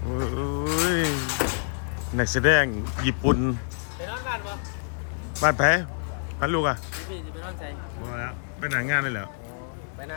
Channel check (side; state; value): right; silent; digital silence